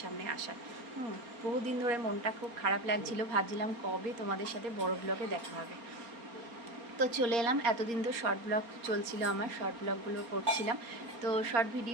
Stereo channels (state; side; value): late; left; 4.3 ms